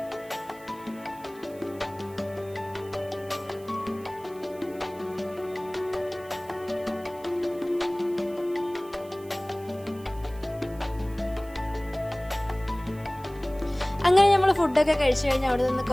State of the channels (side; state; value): right; noise; hiss, 23 dB below the sound